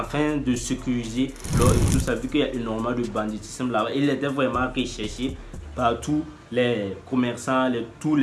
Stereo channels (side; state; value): both; identical; correlation 1.00